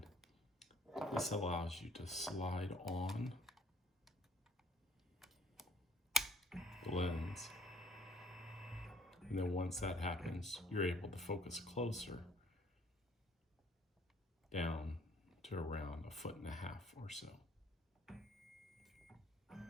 This allows you to slide on the lens. And then once that happens, you're able to focus closer down to around 1.5 feet or so.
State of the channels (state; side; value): normal; both; correlation 0.61